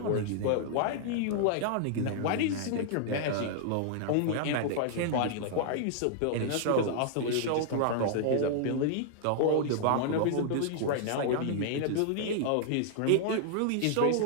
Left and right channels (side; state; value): both; different; correlation -0.01